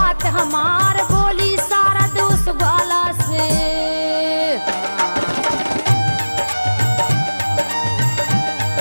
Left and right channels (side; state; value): both; inverted; correlation -1.00